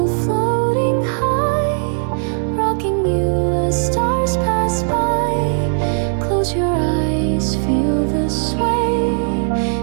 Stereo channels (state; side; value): silent; left; 61 dB below the other